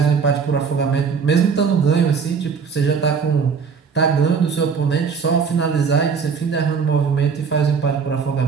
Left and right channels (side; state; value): left; quieter; 5.9 dB